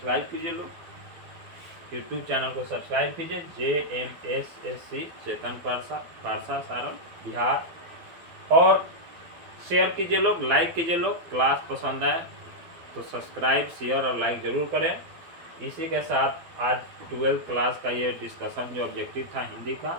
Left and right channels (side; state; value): left; late; 12 ms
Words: कीजिए लोग, यूट्यूब चैनल को सब्सक्राइब कीजिए। JMSSC चेतन पारसा सारण बिहार। और शेयर कीजिए लोग, लाइक कीजिए लोग। क्लास पसंद आए तो सब्सक्राइब शेयर और लाइक जरूर करें। इसी के साथ आज 12th क्लास का ये डिस्कशन जो ऑब्जेक्टिव था हिंदी